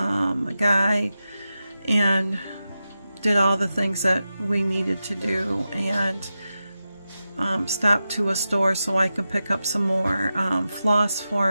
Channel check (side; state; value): both; inverted; correlation -0.92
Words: guy and did all the things that we needed to do, and stopped to a store so I can pick up some more floss